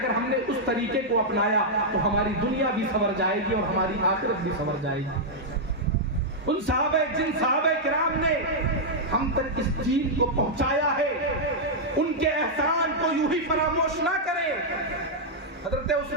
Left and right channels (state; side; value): normal; both; correlation -0.05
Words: ہم نے اس طریقے کو اپنایا تو ہماری دنیا بھی سنور جائے گی اور ہماری آخرت بھی سنور جائے گی. ان جن صحابہ کرام نے ہم تک اس دین کو پہنچایا ہے, ان کے احسان کو یوں ہی فراموش نہ کریں. حضرت